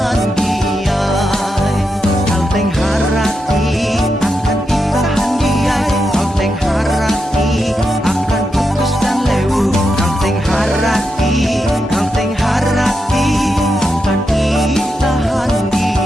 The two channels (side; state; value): both; normal; correlation 0.86